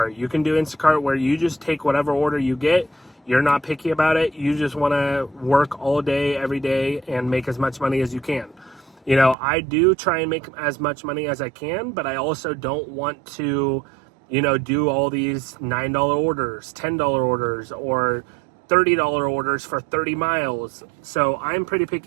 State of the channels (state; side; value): drops out; left; at 9.3 s